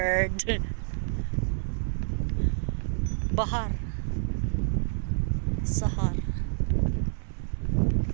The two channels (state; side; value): silent; left; digital silence